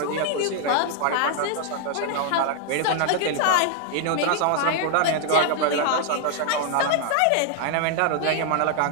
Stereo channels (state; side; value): different; both; correlation 0.00